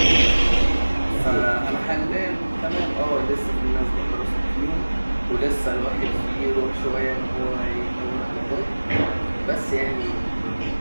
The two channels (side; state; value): both; inverted; correlation -1.00